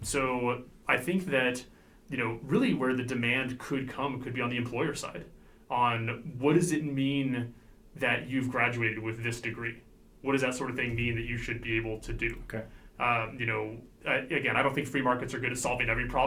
So I think that, really where the demand could be on the employer side on what does it mean that you've graduated with this degree? What does that sort of thing mean that you should be able to do? Okay. Again, I don't think free markets are good at solving every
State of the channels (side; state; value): both; identical; correlation 1.00